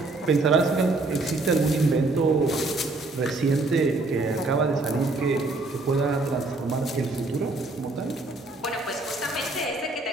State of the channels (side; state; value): left; quieter; 3.2 dB